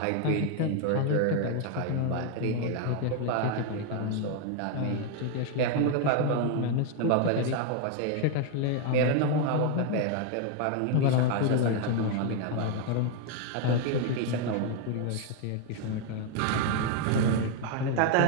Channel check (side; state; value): both; different; correlation 0.01